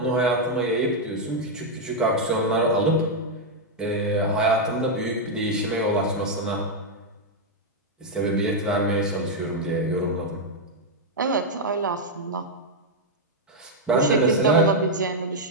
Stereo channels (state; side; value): normal; both; correlation -0.01